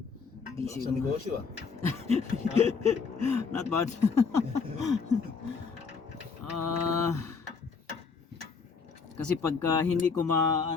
Busy Sa mo. negosyo ah. Not bad. Kasi pagka hindi ko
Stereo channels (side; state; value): right; quieter; 5.2 dB